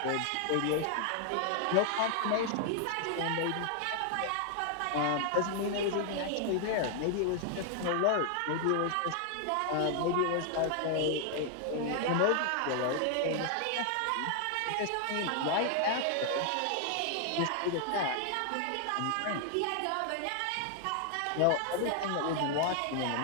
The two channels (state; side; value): different; both; correlation 0.00